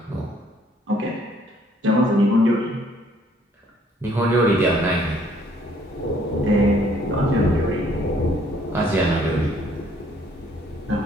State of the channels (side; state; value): both; normal; correlation 0.62